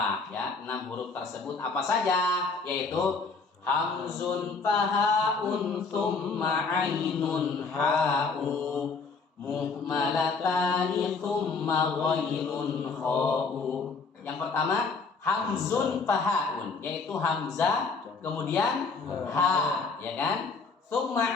ya 6 huruf tersebut apa saja, yaitu hamzun fahaun thumma ainun ha'u muhmalatani thumma ghainun kha'u. Yang pertama hamzun fahaun, yaitu hamzah kemudian ha ya kan, thumma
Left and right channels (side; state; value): right; quieter; 4.4 dB